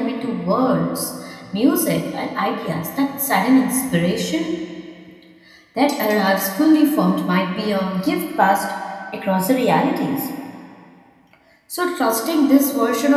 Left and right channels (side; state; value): both; identical; correlation 1.00